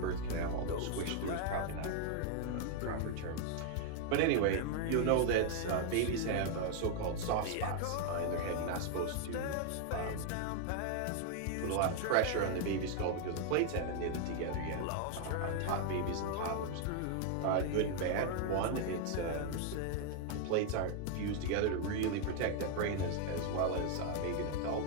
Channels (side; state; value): both; different; correlation 0.00